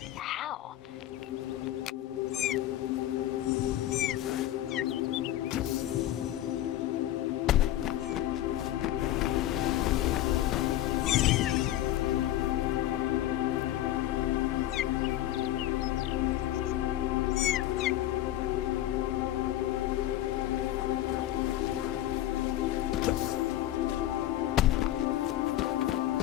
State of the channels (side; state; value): right; quieter; 13.7 dB